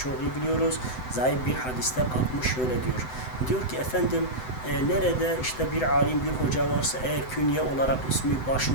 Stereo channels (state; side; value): late; right; 7.9 ms